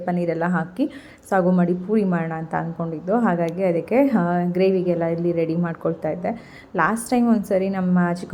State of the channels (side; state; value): both; identical; correlation 1.00